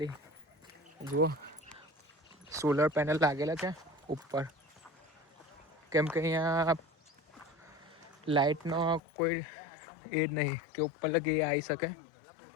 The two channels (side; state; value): right; drops out; at 9.0 s